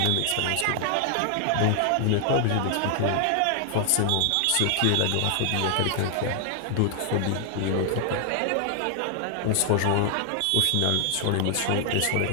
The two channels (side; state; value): both; different; correlation 0.00